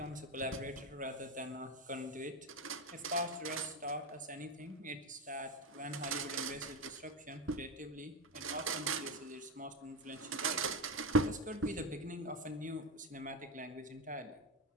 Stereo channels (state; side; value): normal; both; correlation 0.14